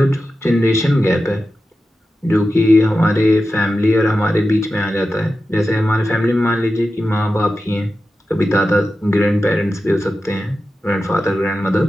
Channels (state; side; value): normal; both; correlation 0.92